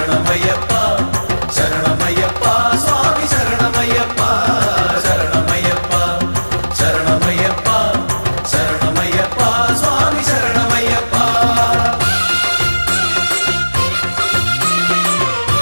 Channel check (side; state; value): both; inverted; correlation -1.00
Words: ശരണമയ്യപ്പ, സ്വാമി ശരണമയ്യപ്പ. ശരണമയ്യപ്പ, ശരണമയ്യപ്പ, ശരണമയ്യപ്പ, സ്വാമി ശരണമയ്യപ്പ.